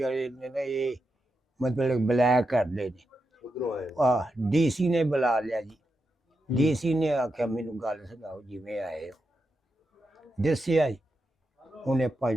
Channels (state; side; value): normal; both; correlation 0.87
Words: ਨੇ ਨਾ ਇਹ ਮਤਲਬ ਬਲੈਕ ਕਰਦੇ ਨੇ। ਡੀਸੀ ਨੇ ਬੁਲਾ ਲਿਆ ਜੀ। ਡੀਸੀ ਨੇ ਆਖਿਆ ਮੈਨੂੰ ਗੱਲ ਸੁਣਾਓ ਜਿਵੇਂ ਆਏ ਹੋ। ਦੱਸਿਆ ਜੀ, ਉਹਨੇ